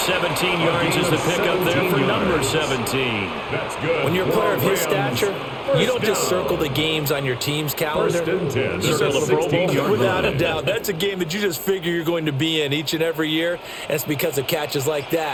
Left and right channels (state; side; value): identical; both; correlation 1.00